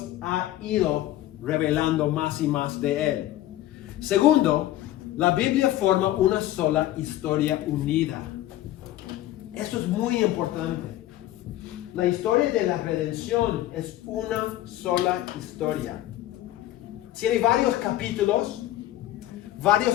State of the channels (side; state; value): right; quieter; 14.3 dB